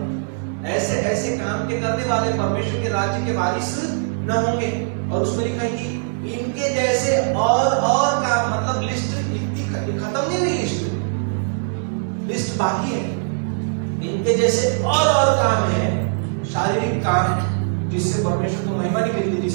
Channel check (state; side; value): silent; left; digital silence